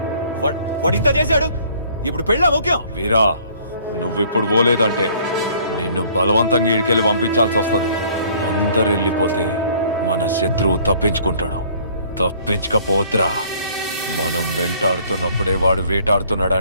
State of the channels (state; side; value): inverted; both; correlation -0.57